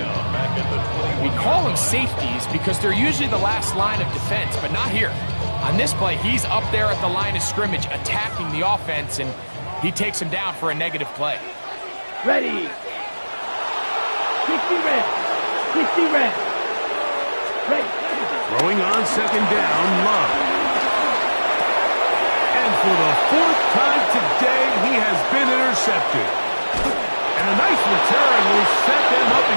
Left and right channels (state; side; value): inverted; both; correlation -1.00